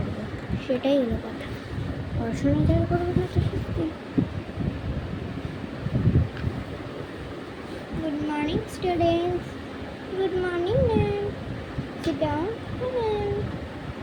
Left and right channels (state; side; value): identical; both; correlation 1.00